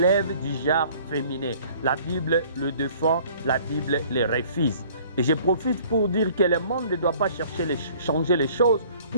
du genre féminin. La Bible le défend, la Bible le refuse. Et je profite pour dire que le monde ne doit pas chercher changer les choses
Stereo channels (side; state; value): both; inverted; correlation -0.54